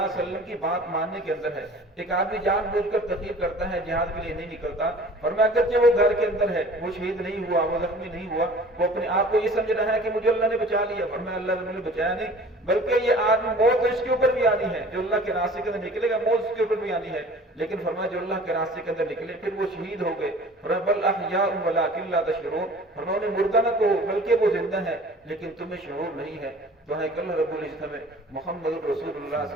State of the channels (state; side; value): normal; both; correlation 0.46